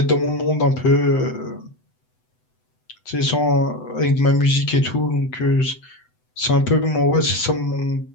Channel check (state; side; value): late; right; 7.9 ms